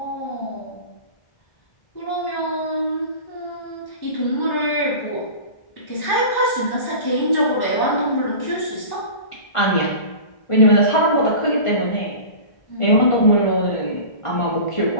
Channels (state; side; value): late; right; 1.5 ms